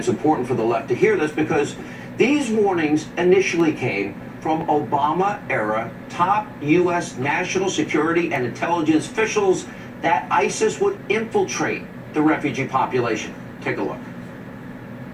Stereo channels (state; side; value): identical; both; correlation 1.00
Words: important for the left to hear this because these warnings initially came from Obama-era top U.S. national security and intelligence officials that ISIS would infiltrate the refugee population. Take a look.